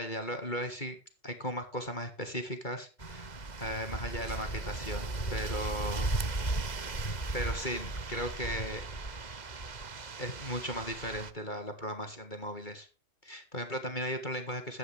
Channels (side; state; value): right; late; 2.0 ms